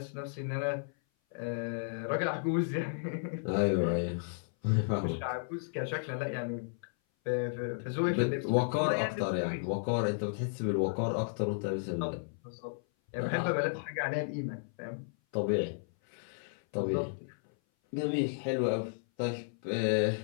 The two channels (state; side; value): silent; right; 56 dB below the other